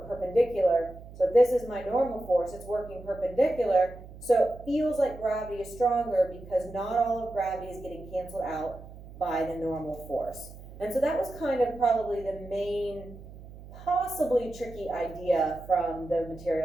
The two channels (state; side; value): noise; right; hum, 16 dB below the sound